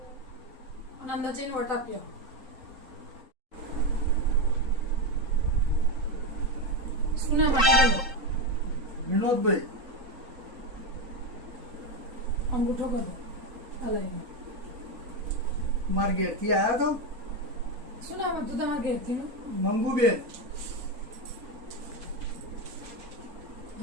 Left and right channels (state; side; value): late; left; 3.8 ms